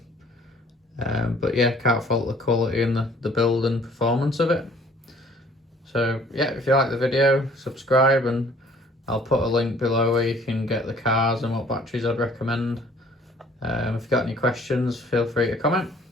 But yeah, can't fault the quality and the build and performance of it. So yeah, if you like the video, subscribe, and I'll put a link below where you can get the cars and what batteries I'd recommend. If you've got any questions, feel free to comment.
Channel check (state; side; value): normal; both; correlation 0.56